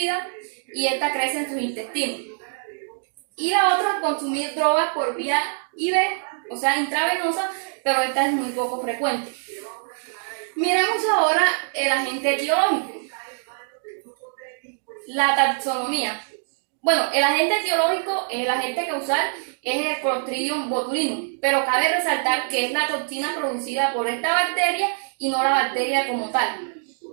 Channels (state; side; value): silent; left; digital silence